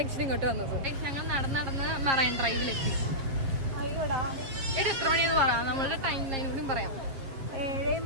ഇങ്ങോട്ട് വന്നത്. ഞങ്ങൾ നടന്ന് മറൈൻ ഡ്രൈവിലെത്തി. എത്ര മണിയെന്ന് പറയാം, നമ്മളുടെ ടൈം ലൈൻ കൂടി പറയാം.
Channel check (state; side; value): late; left; 7.5 ms